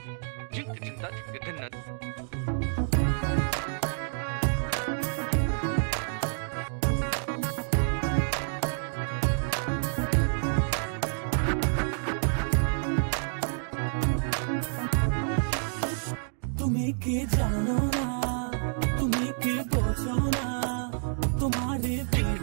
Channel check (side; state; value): left; silent; 58 dB below the other